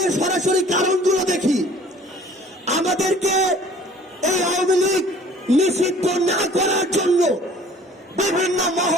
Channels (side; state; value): both; normal; correlation 0.51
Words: সরাসরি কারণগুলো দেখি, আমাদেরকে এই আওয়ামী লীগ নিষিদ্ধ না করার জন্য বিভিন্ন